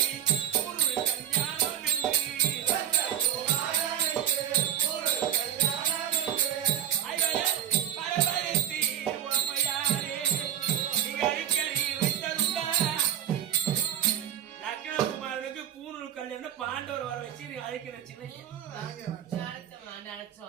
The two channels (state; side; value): quieter; left; 10.4 dB